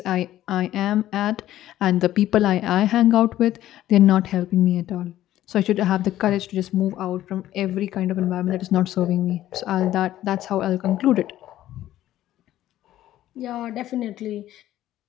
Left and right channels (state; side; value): quieter; right; 13.5 dB